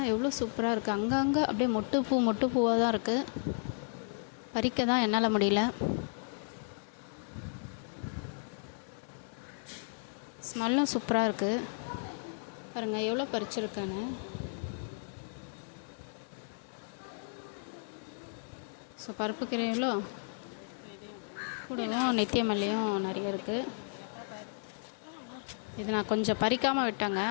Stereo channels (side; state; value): right; silent; digital silence